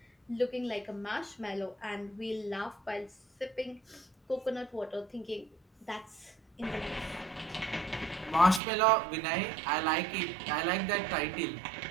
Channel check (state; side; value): drops out; left; at 8.6 s